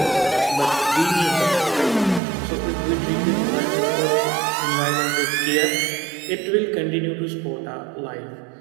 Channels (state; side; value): drops out; left; at 2.2 s